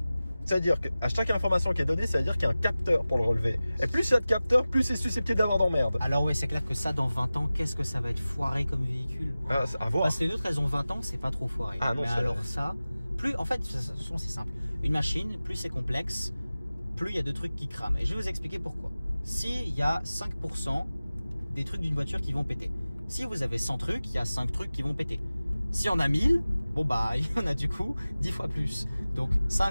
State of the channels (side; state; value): both; inverted; correlation -0.97